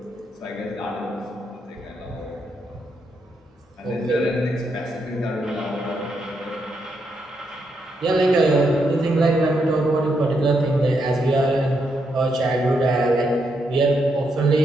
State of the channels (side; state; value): both; normal; correlation 0.80